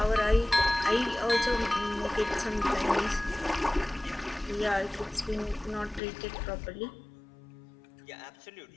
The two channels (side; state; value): right; drops out; at 6.0 s